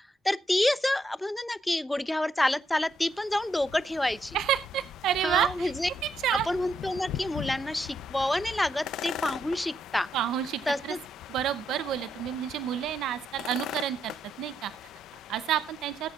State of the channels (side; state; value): both; normal; correlation 0.78